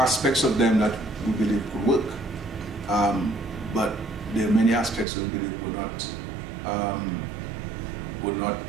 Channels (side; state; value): left; drops out; at 5.1 s